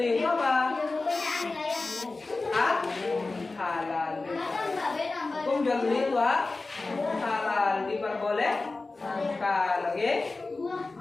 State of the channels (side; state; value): right; quieter; 3.5 dB